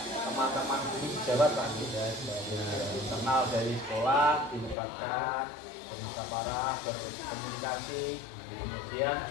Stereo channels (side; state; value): right; drops out; at 4.8 s